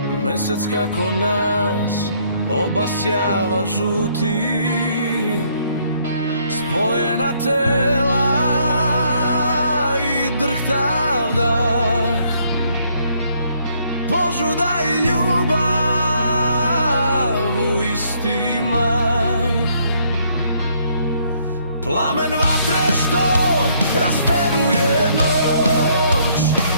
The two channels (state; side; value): inverted; both; correlation -0.68